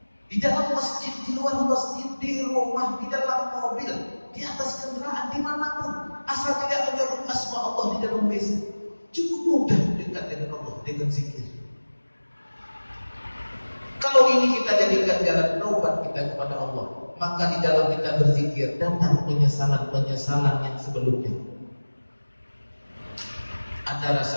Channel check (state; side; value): inverted; both; correlation -1.00